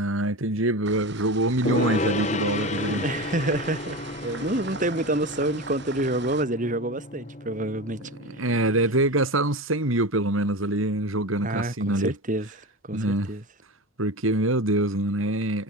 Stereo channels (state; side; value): normal; both; correlation 0.26